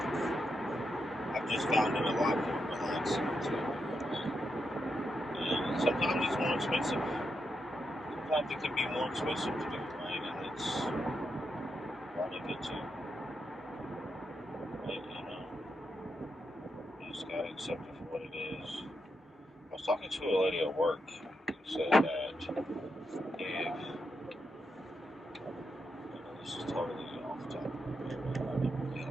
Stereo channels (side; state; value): both; normal; correlation 0.84